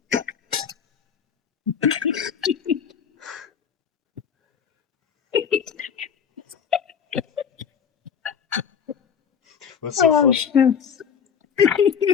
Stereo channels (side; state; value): right; quieter; 7.3 dB